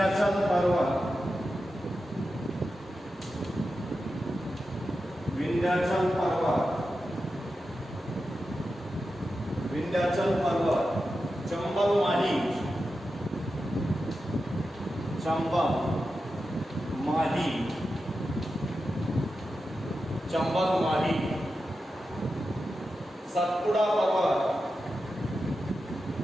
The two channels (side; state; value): both; normal; correlation 0.91